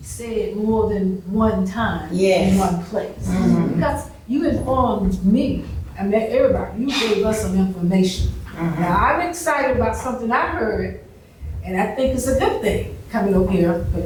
said more than one time in one place. Because you informed me, I met everybody, you gave us some information. Now, I'm excited about something I heard, and I think it's a good thing coming up here. But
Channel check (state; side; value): identical; both; correlation 1.00